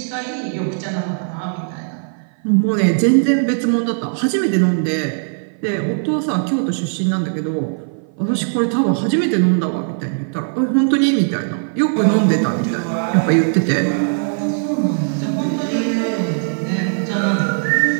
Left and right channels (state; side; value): silent; left; 57 dB below the other